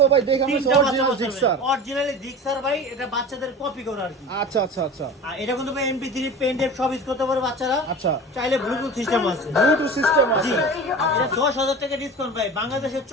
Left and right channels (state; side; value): normal; both; correlation 0.34